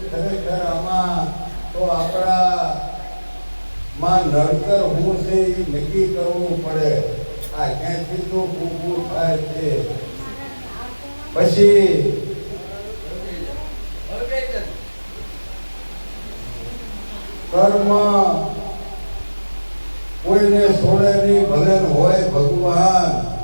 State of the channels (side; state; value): both; inverted; correlation -1.00